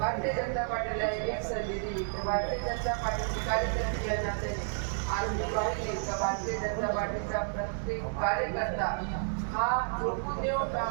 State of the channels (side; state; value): left; silent; 57 dB below the other